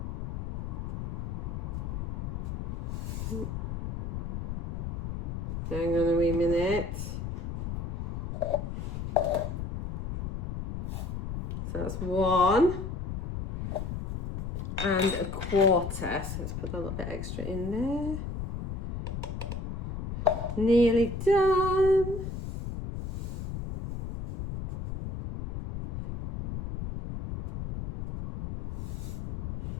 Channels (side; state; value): left; noise; rumble, 5 dB below the sound